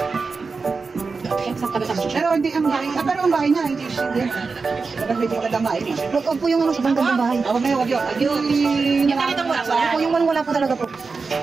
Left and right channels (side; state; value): left; quieter; 4.5 dB